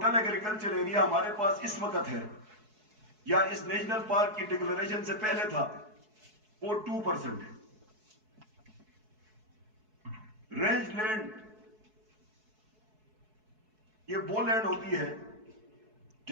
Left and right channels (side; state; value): left; late; 4.7 ms